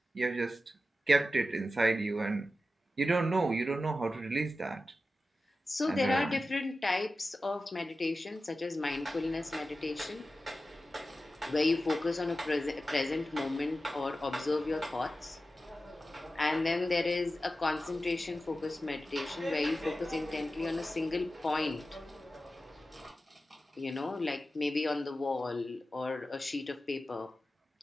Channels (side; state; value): both; normal; correlation 0.93